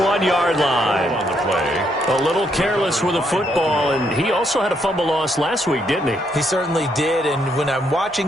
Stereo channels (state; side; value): normal; both; correlation 0.75